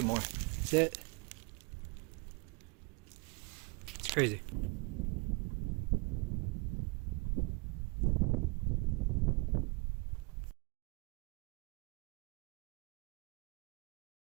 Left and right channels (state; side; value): quieter; left; 29.1 dB